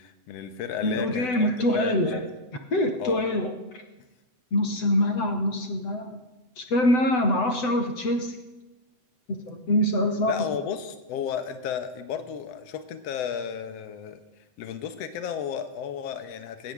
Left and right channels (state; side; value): late; right; 7.9 ms